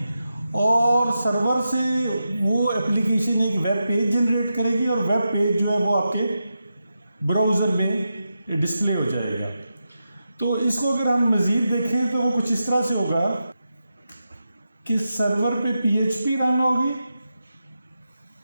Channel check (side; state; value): both; inverted; correlation -0.89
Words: और सर्वर से वो एप्लीकेशन एक वेब पेज जनरेट करेगी और वेब पेज जो है वो आपके ब्राउज़र में डिस्प्ले हो जाएगा। तो इसको अगर हम मज़ीद देखें तो वो कुछ इस तरह से होगा कि सर्वर पे PHP रन होगी